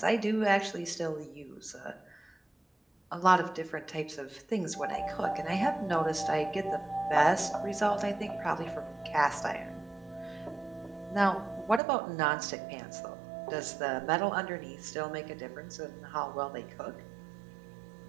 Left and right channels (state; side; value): drops out; left; at 11.8 s